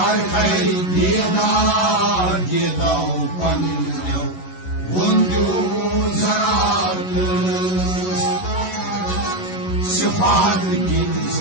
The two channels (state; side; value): late; right; 11 ms